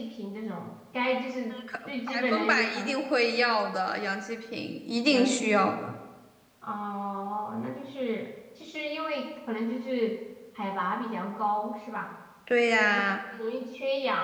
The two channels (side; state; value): both; identical; correlation 1.00